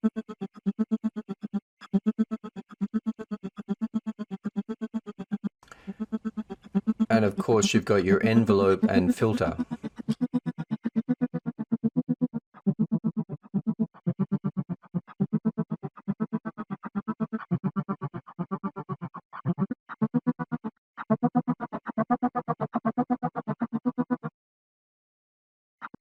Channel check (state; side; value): identical; both; correlation 1.00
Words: And of course you've got your envelope and filter.